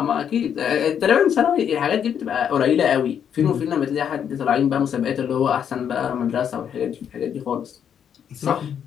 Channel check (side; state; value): right; quieter; 8.4 dB